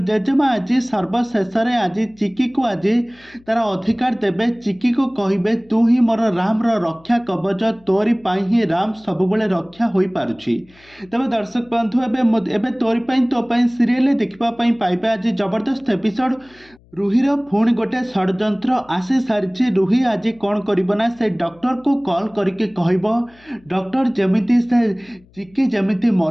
जेजेमा आज सर्वशेष आज चिकी को आज तार अधिकार देवे। चिकी को कहे तू ही मोर राम रक्षा कवच, तोरी ही राम सबुबले रक्षा हो पारुछि। तेज दर्शक बंधु एबे तोरी तो सीरियल देखा पाइबे आज जबरदस्त एपिसोड। रुहीर पुणी गोटे षड्यंत्र आसी सारी। रुही आज कौन करना से डॉक्टर को कॉल करके कहब डॉक्टर जमिति से चिकी जमिति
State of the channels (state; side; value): noise; left; hum, 29 dB below the sound